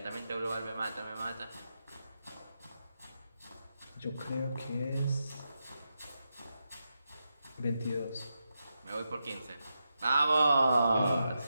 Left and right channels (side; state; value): both; inverted; correlation -0.87